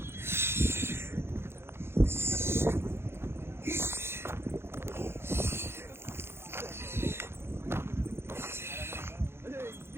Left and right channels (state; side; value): late; left; 0.12 ms